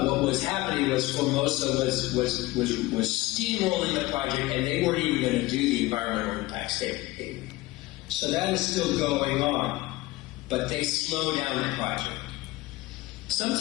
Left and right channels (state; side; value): quieter; right; 19.3 dB